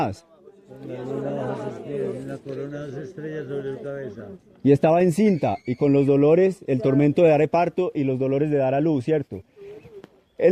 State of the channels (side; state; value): both; identical; correlation 1.00